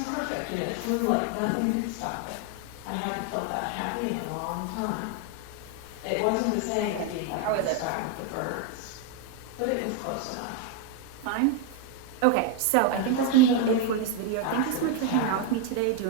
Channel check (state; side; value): different; both; correlation 0.01